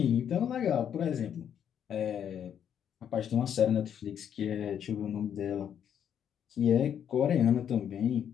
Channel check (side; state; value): right; quieter; 8.9 dB